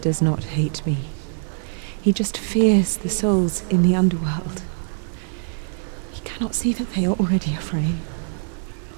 not hate me. He just fears the souls in the underworld. He cannot see that they are already afraid.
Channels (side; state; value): left; silent; 61 dB below the other